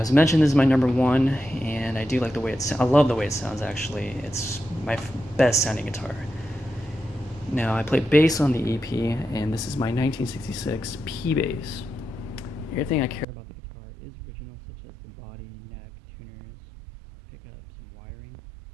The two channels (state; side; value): drops out; left; at 13.2 s